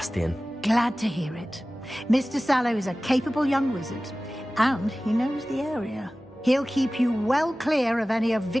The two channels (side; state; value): both; normal; correlation 0.97